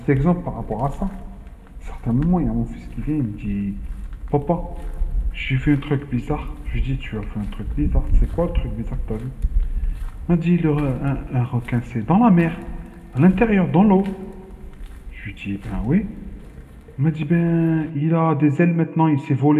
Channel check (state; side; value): identical; both; correlation 1.00